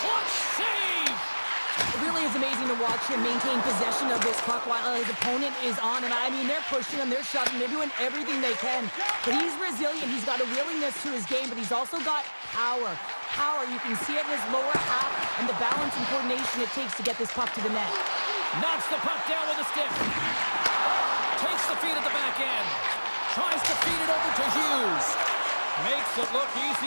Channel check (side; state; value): both; inverted; correlation -1.00